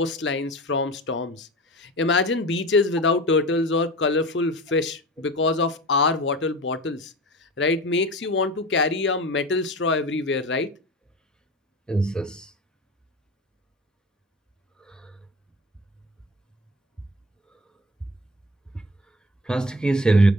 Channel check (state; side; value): normal; both; correlation 0.33